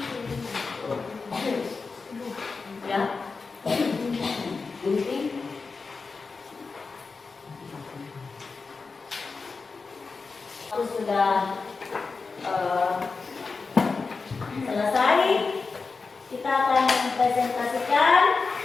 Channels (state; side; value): quieter; right; 4.4 dB